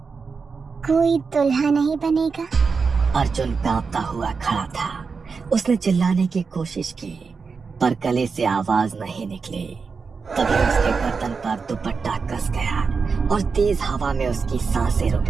कोई दुल्हा नहीं बनेगा। अर्जुन कांपता हुआ खड़ा था। उसने चिल्लाने की कोशिश की पर गले से आवाज नहीं निकली। तभी उसके गर्दन पर दुपट्टा कस गया और तेज हवा में उसकी सांसें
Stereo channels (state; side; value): quieter; left; 5.1 dB